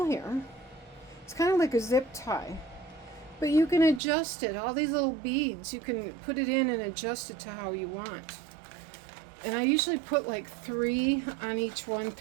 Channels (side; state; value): left; drops out; at 4.0 s